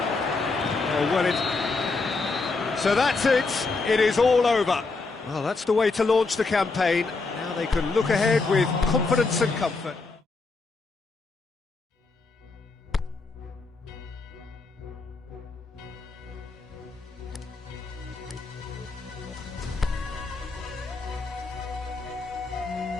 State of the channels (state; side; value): quieter; right; 3.9 dB